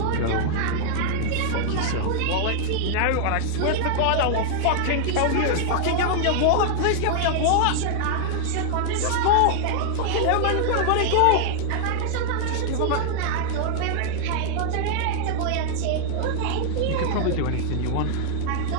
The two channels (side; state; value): both; different; correlation 0.00